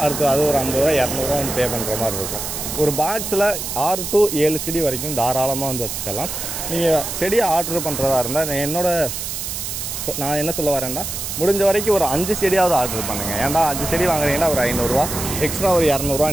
அடுத்து அது ஒரு 50 ரூபா 200 ரூபா வந்து பே பண்ணுற மாதிரி இருக்கும். ஒரு பாக்ஸில் 6 to 7 செடி வரைக்கும் தாராளமாக வந்து வச்சுக்கலாம். நீங்கள் செடியை ஆர்டர் பண்ணுறதா இருந்தால் நான் என்ன சொல்ல வரேன்னா, முடிஞ்ச வரைக்கும் ஒரு 5 செடியாவது ஆர்டர் பண்ணுங்கள். ஏன்டா 5 செடி வாங்குறீங்கன்னா ஒரு 500 ரூபா எக்ஸ்ட்ரா ஒரு 200 ரூபா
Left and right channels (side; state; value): right; noise; hiss, 5 dB below the sound